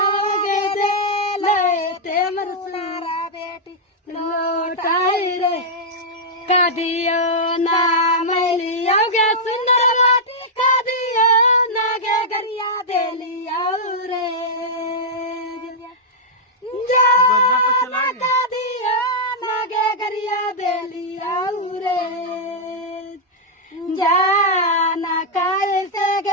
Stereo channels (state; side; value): normal; both; correlation -0.07